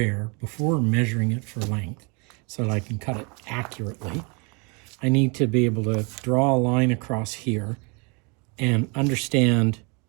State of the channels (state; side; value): quieter; left; 32.2 dB